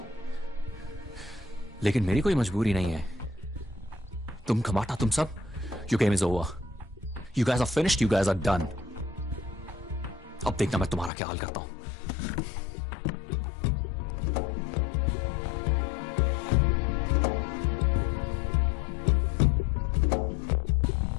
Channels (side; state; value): right; drops out; at 11.1 s